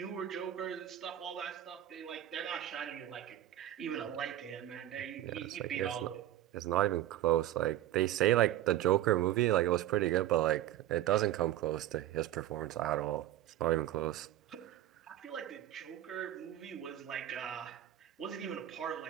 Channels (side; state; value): left; quieter; 13.1 dB